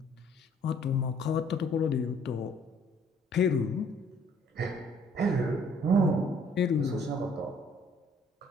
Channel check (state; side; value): normal; both; correlation 0.60